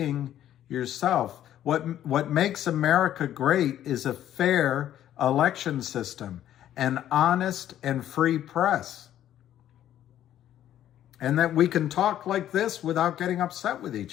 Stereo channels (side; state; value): right; quieter; 11.7 dB